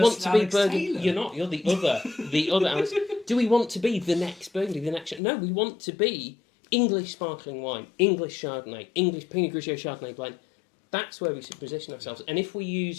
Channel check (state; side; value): drops out; right; at 5.2 s